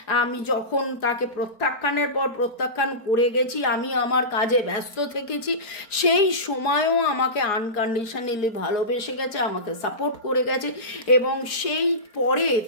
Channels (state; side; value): late; right; 4.4 ms